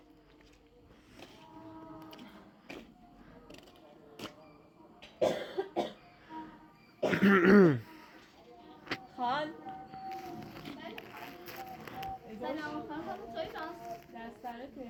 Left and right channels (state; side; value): identical; both; correlation 1.00